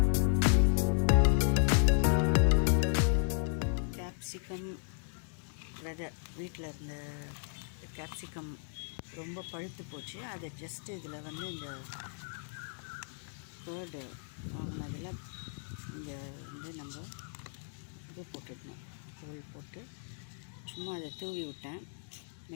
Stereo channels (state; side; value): silent; right; 55 dB below the other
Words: கேப்சிகம் விதை வீட்டில் இருந்த கேப்சிகம் ரொம்ப பழுத்து போச்சு. அதை ஜஸ்ட்டு இதில் வந்து இந்த கேர்டு வாங்கினதில் இங்கே வந்து நம்ம இது போட்டுடணும், தோல் போட்டு சும்மா அதை தூவி விட்டேன்.